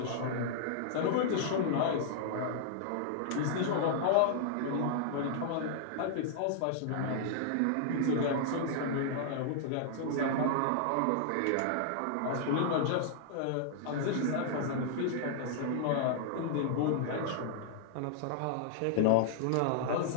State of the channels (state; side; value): different; both; correlation -0.01